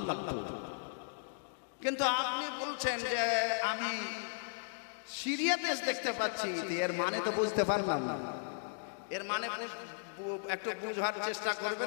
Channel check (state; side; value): silent; right; digital silence